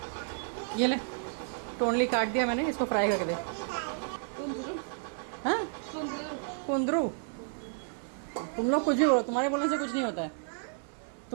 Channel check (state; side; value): silent; left; 57 dB below the other